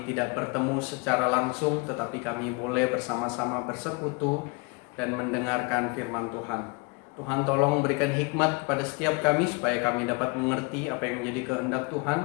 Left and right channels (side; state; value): right; quieter; 30.8 dB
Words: tidak bertemu secara langsung, tetapi kami boleh bersama-sama bersekutu dan mendengarkan firman Tuhan. Tuhan, tolong berikan hikmat kepada setiap kami supaya kami dapat mengerti apa yang menjadi kehendak Tuhan.